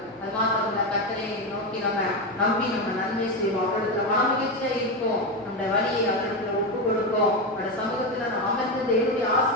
அது மாத்திரம் கர்த்தரை நோக்கி நம்ம நம்பி நம்ம நன்மை செய்வோம். அவர்களுக்கு மனமகிழ்ச்சியா இருப்போம். நம்முடைய வழியை அவர்களுக்கு ஒப்பு கொடுப்போம். அவருடைய சமூகத்தில் நாம் அமர்ந்து தேவனுடைய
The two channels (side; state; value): both; normal; correlation 0.13